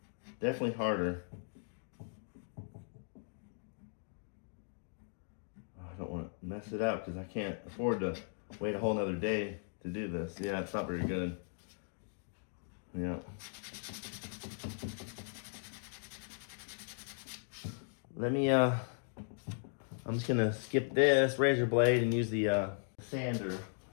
Definitely harder. I don't want to mess it up because I can't afford to wait a whole nother day to do this. Yeah, it's not very good. Yeah. Let me, I'm just gonna skip this razor blade and use the sander.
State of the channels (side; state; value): right; silent; digital silence